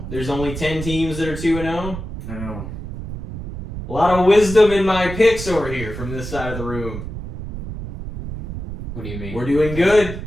There's only 10 teams that are 2-0. I know. A lot of wisdom in my picks over here from this side of the room. What do you mean? We're doing good.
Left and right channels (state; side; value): noise; right; rumble, 8 dB below the sound